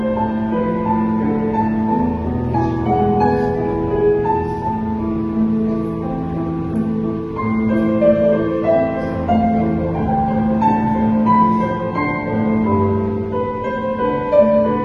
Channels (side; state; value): both; identical; correlation 1.00